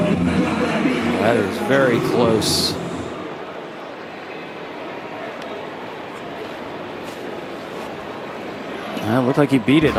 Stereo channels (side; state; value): both; identical; correlation 1.00